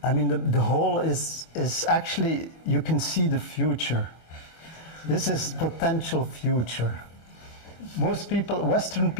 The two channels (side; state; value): right; late; 25 ms